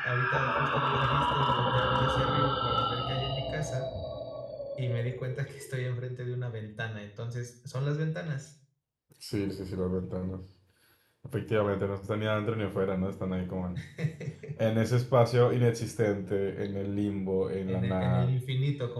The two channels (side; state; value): both; identical; correlation 1.00